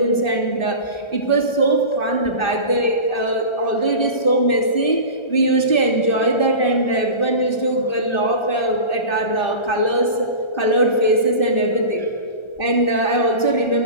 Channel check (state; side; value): late; right; 1.3 ms